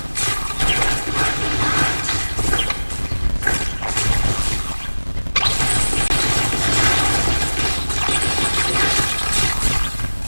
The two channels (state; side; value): inverted; both; correlation -1.00